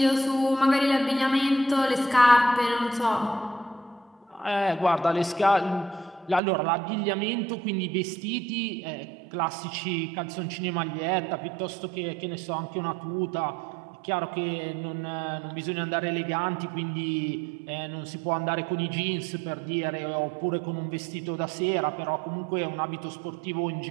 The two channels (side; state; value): left; drops out; at 6.4 s